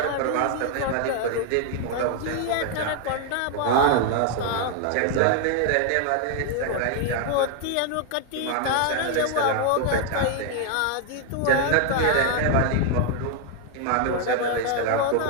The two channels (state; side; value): different; both; correlation 0.00